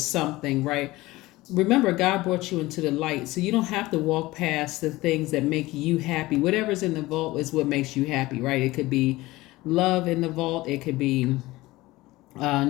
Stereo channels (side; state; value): right; quieter; 19.2 dB